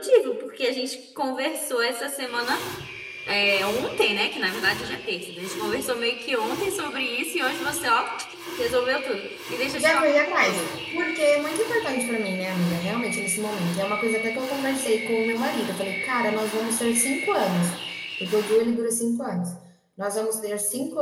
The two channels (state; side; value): identical; both; correlation 1.00